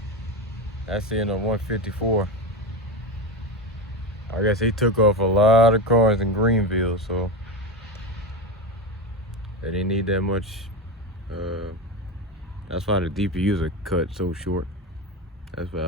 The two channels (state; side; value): normal; both; correlation 0.19